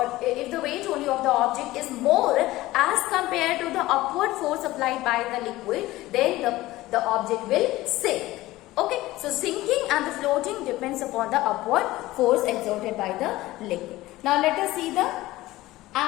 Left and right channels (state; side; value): quieter; right; 17.5 dB